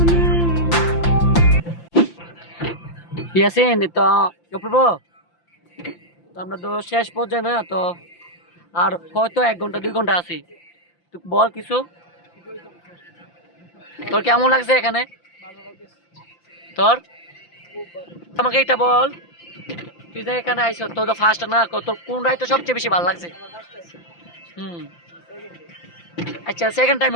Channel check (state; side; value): late; right; 5.8 ms